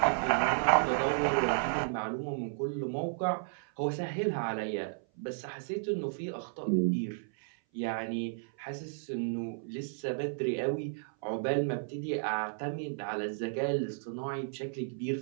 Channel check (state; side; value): silent; left; 56 dB below the other